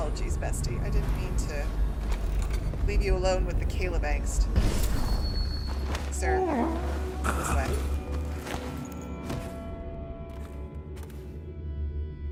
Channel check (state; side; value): identical; both; correlation 1.00